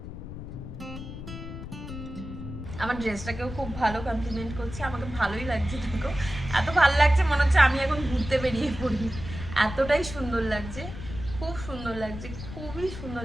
আমার ড্রেসটাকেও খুব ভালো কমপ্লিমেন্ট করছে, আমাকে ভালোই লাগছে। দেখো, এত ভালো লাগছে মনে হচ্ছে আমি এখন ঘুরতে বেরিয়ে পড়ি, এতটাই সুন্দর লাগছে। খুব সুন্দর লাগছে, খুবই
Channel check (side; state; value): left; noise; rumble, 10 dB below the sound